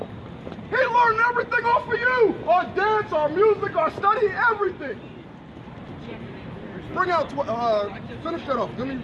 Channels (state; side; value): identical; both; correlation 1.00